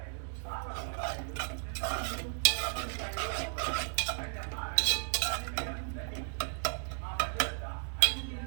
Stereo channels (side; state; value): left; silent; 55 dB below the other